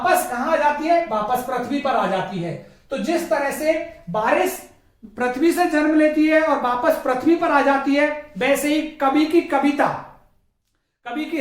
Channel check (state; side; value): identical; both; correlation 1.00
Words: कहां आ जाती है, वापस पृथ्वी पर आ जाती है। तो जिस तरह से बारिश पृथ्वी से जन्म लेती है और वापस पृथ्वी पर आ जाती है, वैसे ही कवि की कविता कवि